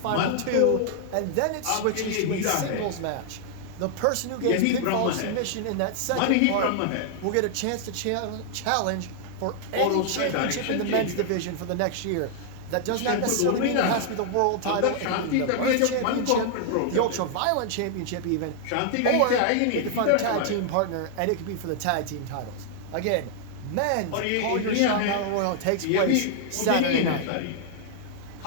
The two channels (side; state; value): both; different; correlation -0.01